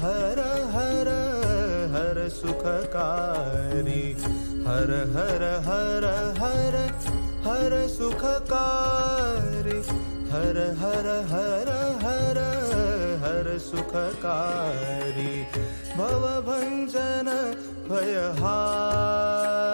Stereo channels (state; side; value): inverted; both; correlation -1.00